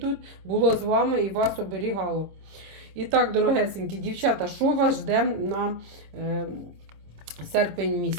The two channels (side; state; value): left; late; 26 ms